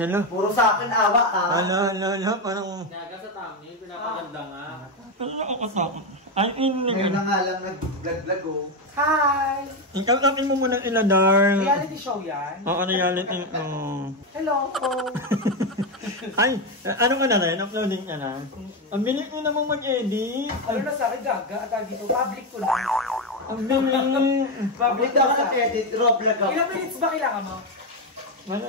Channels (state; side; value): normal; both; correlation 0.09